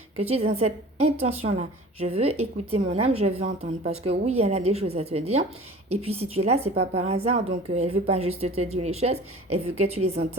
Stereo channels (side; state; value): both; normal; correlation 0.42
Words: que tu es dans cette intention-là. Je veux écouter mon âme, je veux entendre. Parce que oui, elle a des choses à te dire. Et puis, si tu es là, c'est pas par hasard. Donc, elle veut pas juste te dire les choses. Elle veut que tu les